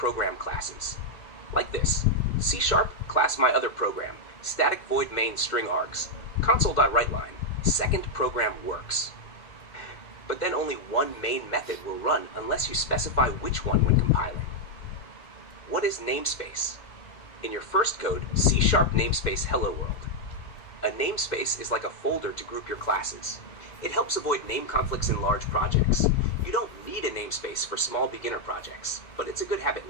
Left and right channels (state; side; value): late; right; 2.1 ms